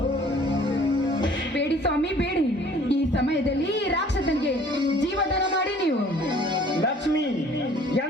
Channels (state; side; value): normal; both; correlation 0.53